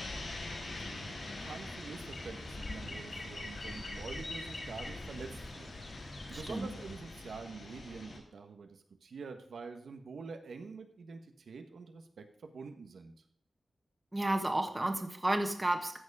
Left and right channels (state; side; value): normal; both; correlation 0.95